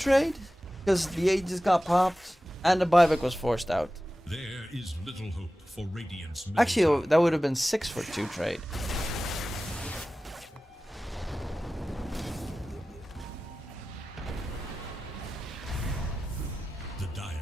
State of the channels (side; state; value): both; normal; correlation 0.95